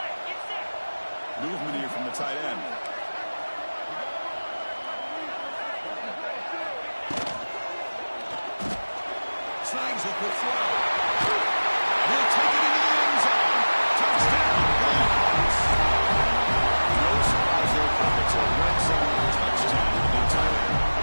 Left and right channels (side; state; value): both; inverted; correlation -1.00